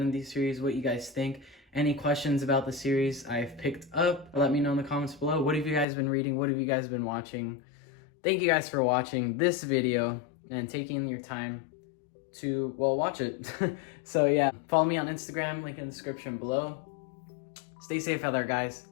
of these series, what you guys think. Any questions about the series I've picked up, let me know in the comments below. What have you guys been reading? What have you guys been watching? Thank you guys for watching this video and taking your time to, well, watch it. So yeah, follow me on Instagram, link in the description below. Stay safe out there, guys.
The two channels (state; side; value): drops out; right; at 5.9 s